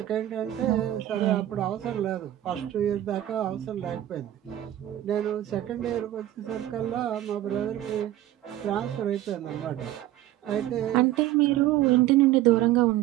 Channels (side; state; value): left; quieter; 13.6 dB